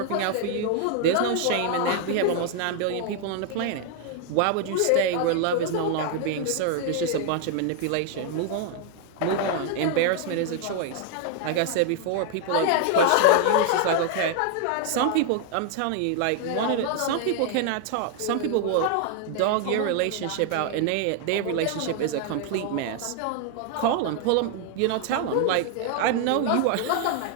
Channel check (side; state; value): both; different; correlation 0.00